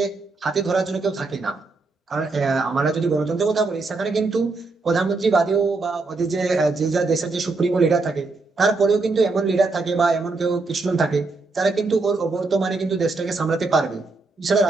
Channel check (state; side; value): quieter; left; 3.7 dB